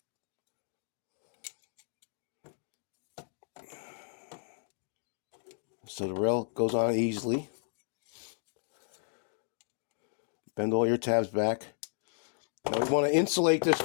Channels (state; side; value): silent; right; digital silence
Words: So the rail goes on easily. Bend all your tabs back. Now we want to insulate this